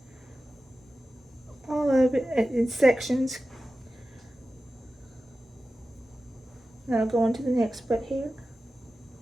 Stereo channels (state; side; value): normal; both; correlation 0.94